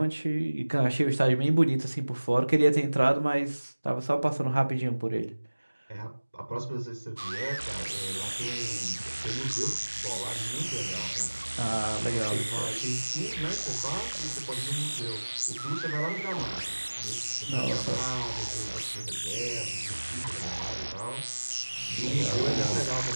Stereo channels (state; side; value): inverted; both; correlation -1.00